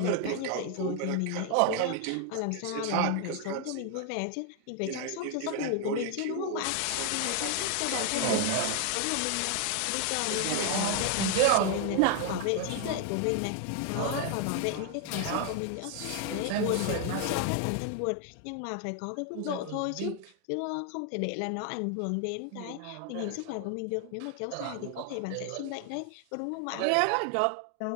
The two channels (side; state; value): both; different; correlation 0.00